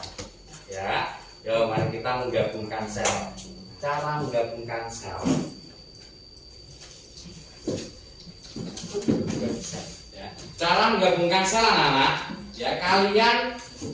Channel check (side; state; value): both; identical; correlation 1.00